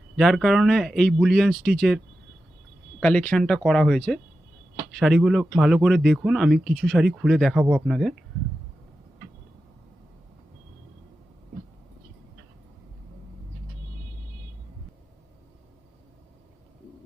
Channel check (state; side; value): normal; both; correlation 0.92